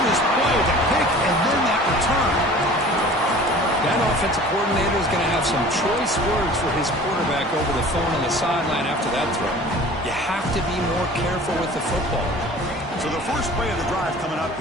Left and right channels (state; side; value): normal; both; correlation 0.44